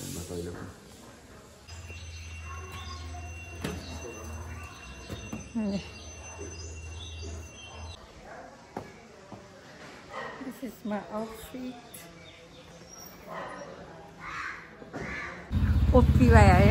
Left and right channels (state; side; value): identical; both; correlation 1.00